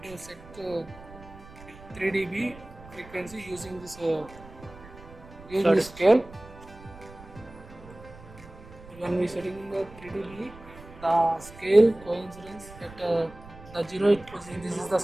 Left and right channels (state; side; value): noise; right; rumble, 19 dB below the sound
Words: to set 3 dB frequency using this scale. When we setting the 3 dB, the scale coincidence at the 0 position. This is the